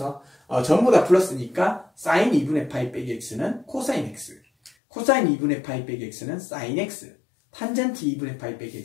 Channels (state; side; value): drops out; right; at 4.7 s